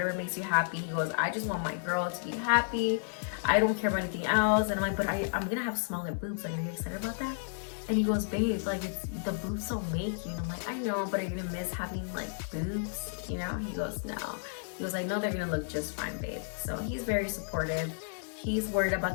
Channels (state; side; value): silent; right; digital silence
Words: makes you happy. He goes, I just want my girl to be happy. I don't care about anything else. And I'm like, but I'm gonna have smaller boobs. Like, are you excited about that? And he goes, babe, like, it's the boobs don't make you. And I'm like, I know, but are you gonna miss having like boobs? You know? He goes, no. He goes, I know they're gonna look just fine, babe. So he's very supportive. He's worried